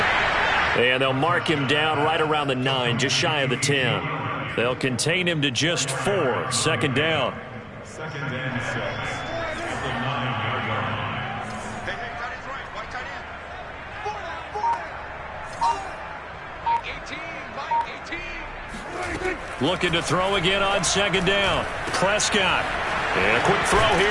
And they'll mark him down right around the 9, just shy of the 10. They'll contain him to just 4. 2nd down. 2nd and 6 at the 9-yard line. Looking to throw again on 2nd down. Prescott. And a quick throw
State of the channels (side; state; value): both; identical; correlation 1.00